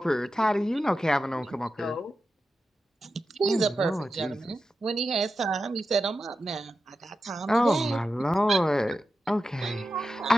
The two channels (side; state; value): both; normal; correlation 0.90